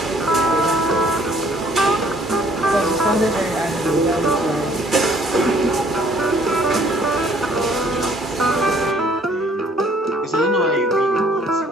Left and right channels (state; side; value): normal; both; correlation 0.60